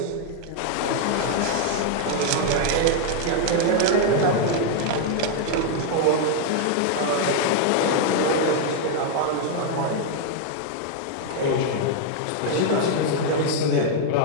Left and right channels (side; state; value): both; different; correlation 0.00